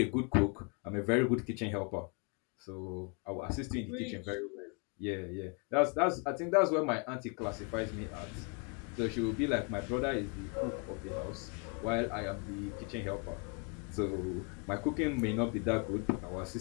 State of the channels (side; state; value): right; quieter; 34.4 dB